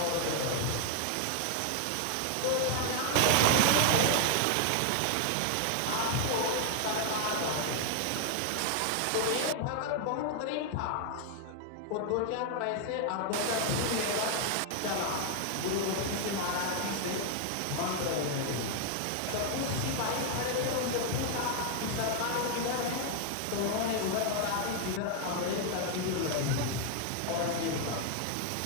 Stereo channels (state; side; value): different; both; correlation 0.00